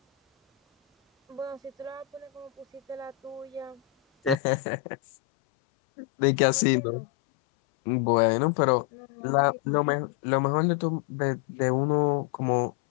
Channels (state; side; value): drops out; right; at 4.4 s